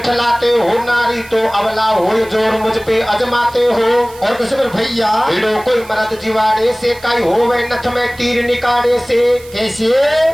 हो? नारी तो अबला हो जोर मुझ पे अजमाते हो। और कैसे मेरे भैया भिड़ो कोई मरद जिवाड़े से कई हो वे नथ में तीर निकाले से। कैसे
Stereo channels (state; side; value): noise; right; hiss, 22 dB below the sound